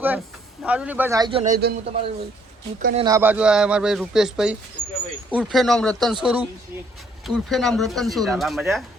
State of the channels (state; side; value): normal; both; correlation 0.65